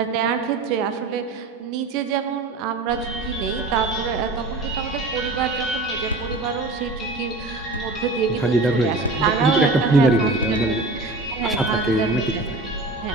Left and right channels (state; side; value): quieter; left; 3.2 dB